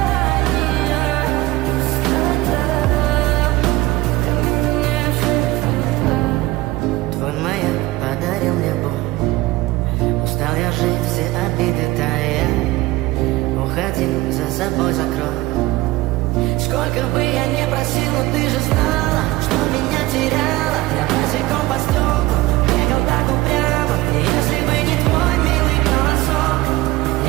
пустота. В камине в 6 утра. Твой маяк подарил мне боль. Устал я жить, все обиды тая. Уходи, за собой закрой. Сколько бы я не просил, но ты же знала, что меня теряла. Я босиком по стеклу бегал так упрямо. И если бы не твой милый голосок,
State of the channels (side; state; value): left; quieter; 18.9 dB